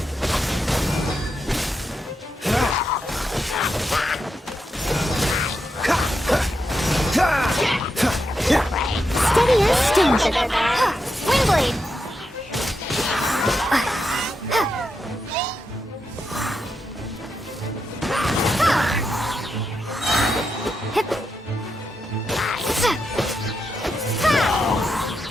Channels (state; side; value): normal; both; correlation 0.85